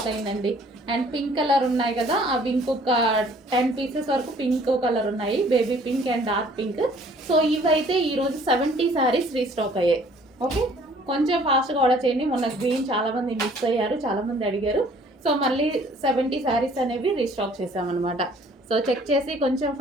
అయిందండి. అండ్ పింక్ కలర్ ఉన్నాయి కదా, అవి ఇంకొక 10 పీసెస్ వరకు పింక్ కలర్ ఉన్నాయి, baby pink and dark pink. So ఇవైతే ఈరోజు 70 శారీస్ రీస్టాక్ అయ్యాయి. ఓకే, కొంచెం ఫాస్ట్గా ఆర్డర్ చేయండి. మొన్న గ్రీన్ చాలామంది మిస్ అయ్యారు, చాలామంది అడిగారు. సో మళ్ళీ 70 శారీస్ అనేవి రీస్టాక్ చేసామన్నమాట. సో చెక్ చేసి కొంచెం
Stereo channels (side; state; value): both; normal; correlation 0.56